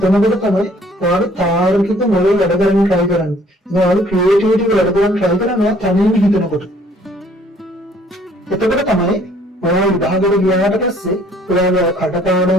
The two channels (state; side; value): normal; both; correlation 0.59